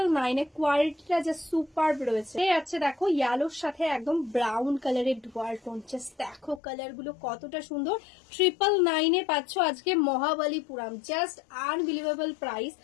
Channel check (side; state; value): right; drops out; at 6.6 s